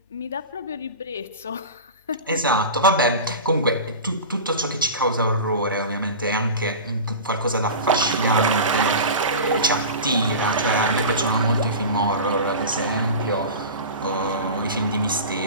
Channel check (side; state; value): both; inverted; correlation -0.30